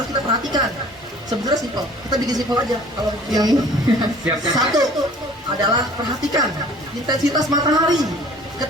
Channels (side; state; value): both; normal; correlation 0.49